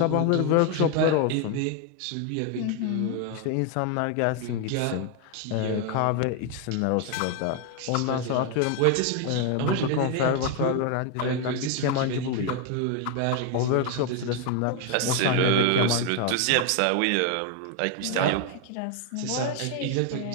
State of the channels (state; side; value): different; both; correlation 0.01